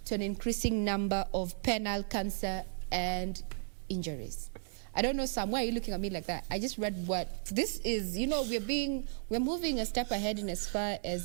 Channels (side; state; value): left; silent; 55 dB below the other